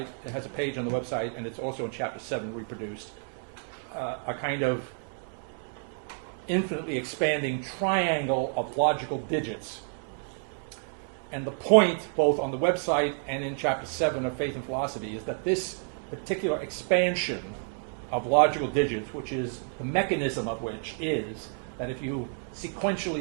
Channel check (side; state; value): left; silent; 55 dB below the other